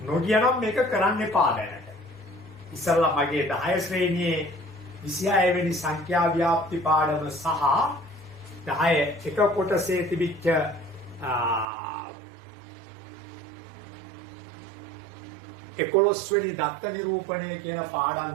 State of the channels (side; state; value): left; drops out; at 11.7 s